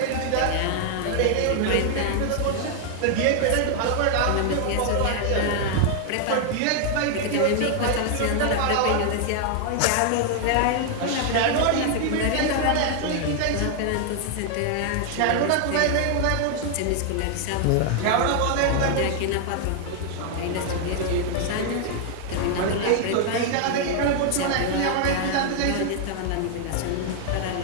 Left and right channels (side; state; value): both; different; correlation 0.00